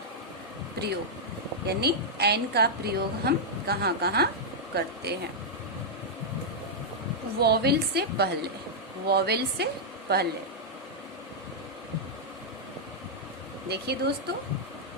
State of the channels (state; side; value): normal; both; correlation -0.06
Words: प्रयोग, यानी एन का प्रयोग हम कहाँ कहाँ करते हैं? वोवेल से पहले, वोवेल से पहले। देखिए दोस्तों,